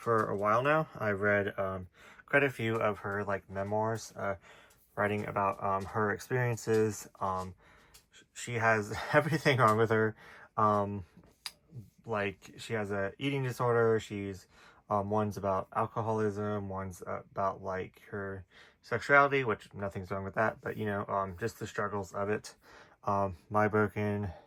a while now. I read quite a few of her like memoirs, writing about her experiences. She has everything wrong with her. Like she has a eating disorder. She's one's about alcoholism, one's about like her sexuality, which nothing's wrong with that, but you know, just the struggles of it. My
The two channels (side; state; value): both; identical; correlation 1.00